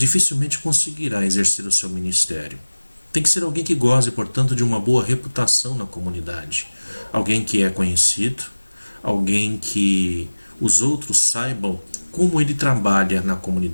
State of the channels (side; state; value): both; inverted; correlation -1.00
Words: conseguirá exercer o seu ministério. Tem que ser alguém que goze, portanto, de uma boa reputação na comunidade. Alguém que é conhecido, alguém que os outros saibam como ele trabalha na